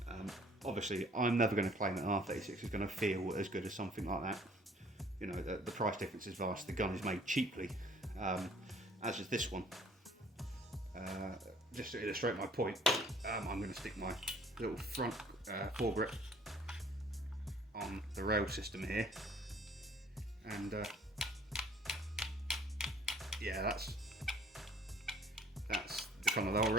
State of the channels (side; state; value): both; normal; correlation 0.57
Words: Obviously I'm never going to claim that an R36 is going to feel as good as something like that. You know, the price difference is vast, the gun is made cheaply, as is this one. Just to illustrate my point, I'm going to stick my little front foregrip on the rail system here, and yeah, that's the kind of the whole